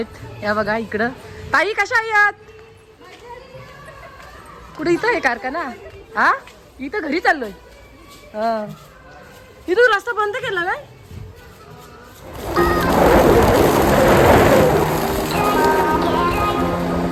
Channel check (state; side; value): identical; both; correlation 1.00